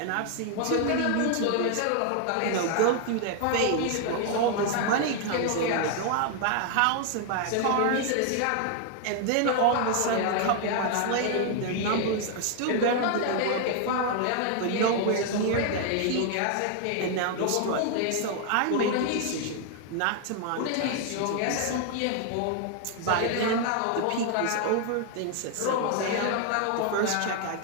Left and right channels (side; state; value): both; different; correlation 0.00